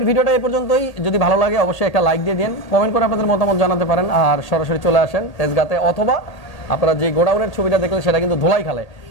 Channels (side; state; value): right; late; 1.8 ms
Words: ভিডিওটা এই পর্যন্তই। যদি ভালো লাগে অবশ্যই একটা লাইক দিয়ে দিন, কমেন্ট করে আপনাদের মতামত জানাতে পারেন, আর সরাসরি চলে আসেন তেজগাঁতে, অথবা আপনারা যে গোডাউনের ছবিটা দেখলেন সেটা কিন্তু ধোলাইখালে।